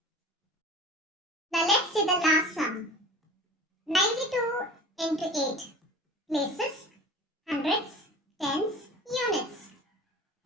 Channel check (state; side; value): normal; both; correlation 0.39